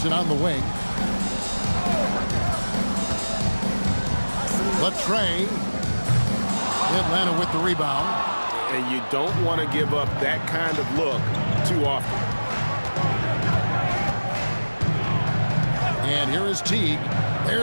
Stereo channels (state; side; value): inverted; both; correlation -1.00